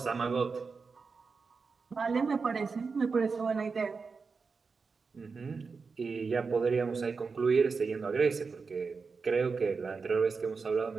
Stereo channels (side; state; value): left; quieter; 4.8 dB